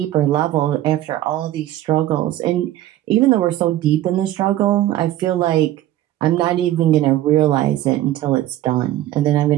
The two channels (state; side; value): quieter; left; 13.7 dB